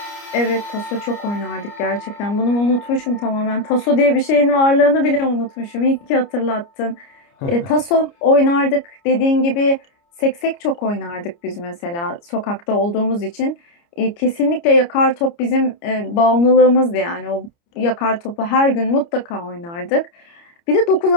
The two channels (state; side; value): late; right; 29 ms